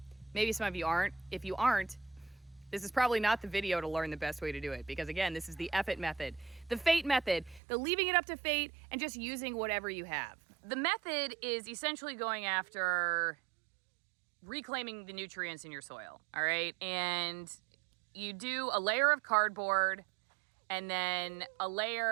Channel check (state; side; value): drops out; left; at 7.6 s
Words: Maybe some of you aren't. If you aren't, this is probably not the video to learn the best way to do it, because again, this is the effort method, the fate method, the leaving it up to fate and just using whatever you have. The method is essentially going after reclaiming the nutrients in your soil, all right? And you do a layer of cardboard and then a